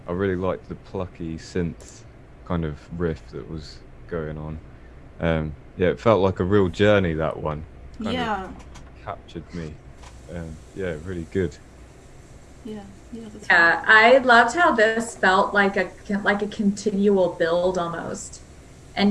I really liked the plucky synth kind of riff that was going on. Yeah, it felt like a real journey, that one. Kind Yeah, of captured me. Yeah, really good. yeah, that's Yeah, I loved how this felt like a continual build almost,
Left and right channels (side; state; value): both; identical; correlation 1.00